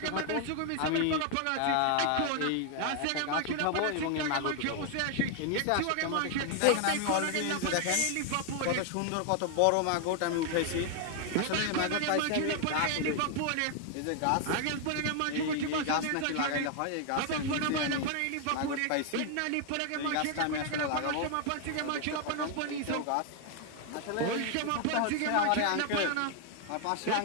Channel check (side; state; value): both; different; correlation 0.00